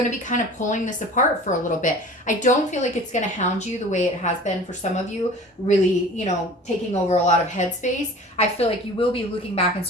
to be kind of pulling this apart for a little bit. I don't feel like it's going to hound you the way it has been for some of you, really, you know, taking over a lot of headspace. I feel like you will be looking back in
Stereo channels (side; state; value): both; normal; correlation 0.42